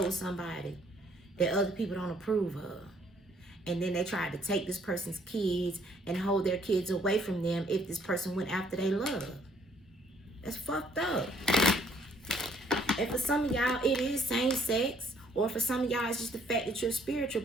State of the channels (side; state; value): both; normal; correlation 0.64